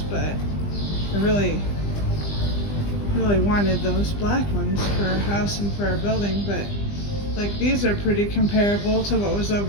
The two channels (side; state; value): right; late; 20 ms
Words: but I really wanted those black ones for our house and for our building. But like these are pretty comparable to what was